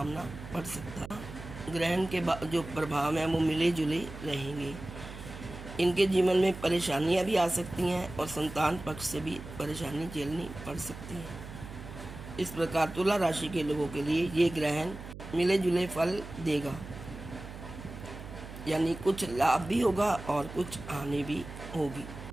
पड़ सकता है। ग्रहण के जो प्रभाव हैं वो मिले जुले रहेंगे। इनके जीवन में परेशानियां भी आ सकती हैं और संतान पक्ष से भी परेशानी झेलनी पड़ सकती है। इस प्रकार तुला राशि के लोगों के लिए ये ग्रहण मिले जुले फल देगा, यानी कुछ लाभ भी होगा और कुछ हानि भी होगी।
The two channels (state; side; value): noise; right; hum, 12 dB below the sound